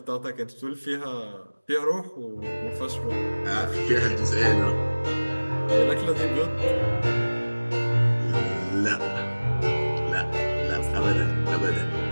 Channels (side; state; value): both; inverted; correlation -1.00